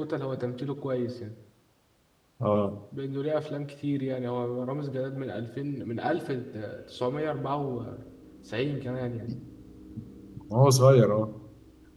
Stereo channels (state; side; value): identical; both; correlation 1.00